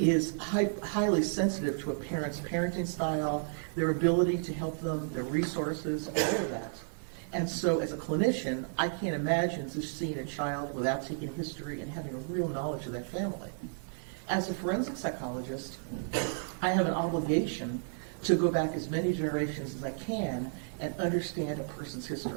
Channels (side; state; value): left; silent; 56 dB below the other